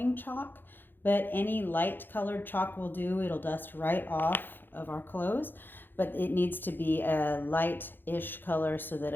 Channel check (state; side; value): late; right; 0.096 ms